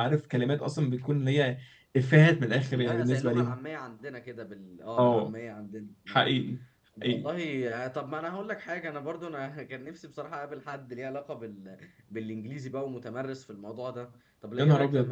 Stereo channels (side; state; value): both; identical; correlation 1.00